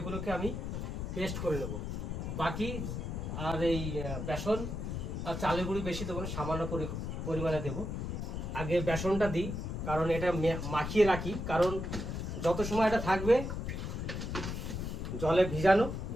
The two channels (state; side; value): noise; left; rumble, 4 dB below the sound